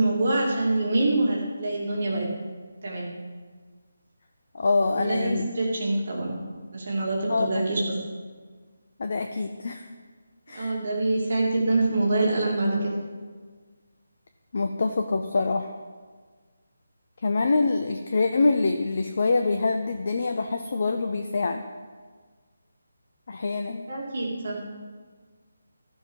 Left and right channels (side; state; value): both; inverted; correlation -0.89